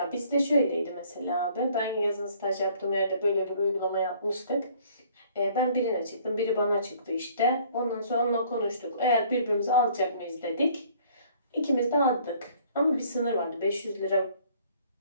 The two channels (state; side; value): inverted; both; correlation -0.58